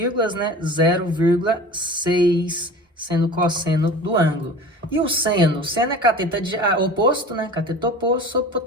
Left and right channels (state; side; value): normal; both; correlation 0.38